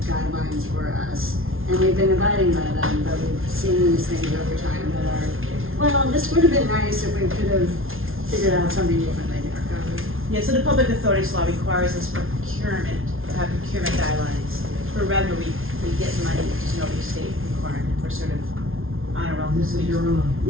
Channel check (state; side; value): late; left; 0.61 ms